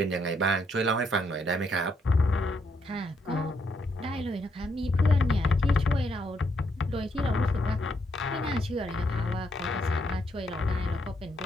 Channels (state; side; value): normal; both; correlation 0.76